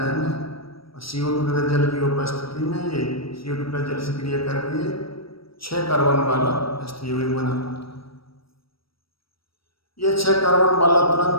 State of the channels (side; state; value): right; late; 0.75 ms